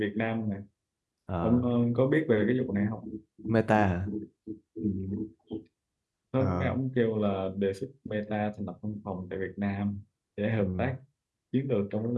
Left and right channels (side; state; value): both; identical; correlation 1.00